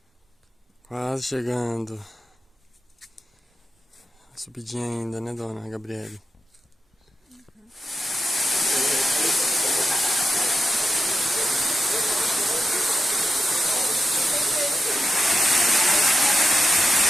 Quase chegando. Subidinha ainda, né, dona Gabriele?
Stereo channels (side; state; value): both; normal; correlation 0.89